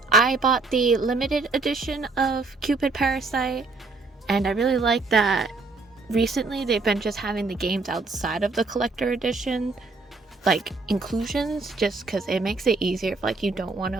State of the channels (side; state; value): left; quieter; 3.7 dB